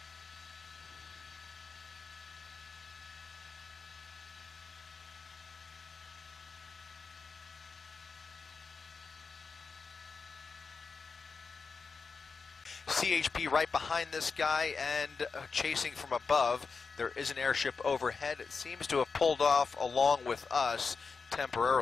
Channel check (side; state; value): right; quieter; 4.9 dB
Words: CHP right behind this guy and chasing from above. There is an airship overhead. It seems to have pulled off along with us